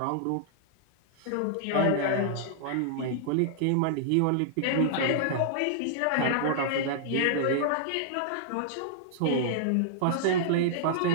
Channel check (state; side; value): different; both; correlation -0.01